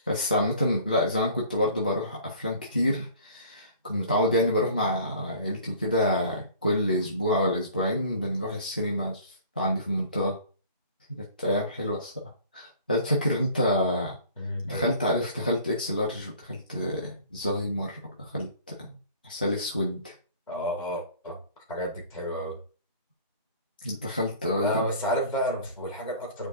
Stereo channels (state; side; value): inverted; both; correlation -0.48